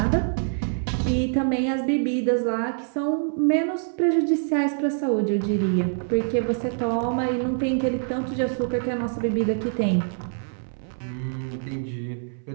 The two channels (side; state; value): left; silent; 62 dB below the other